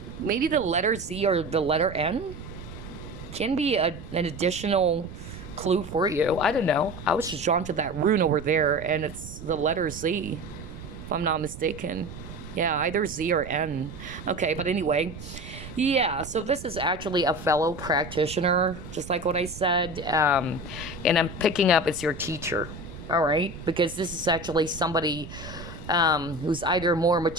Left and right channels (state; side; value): noise; right; rumble, 13 dB below the sound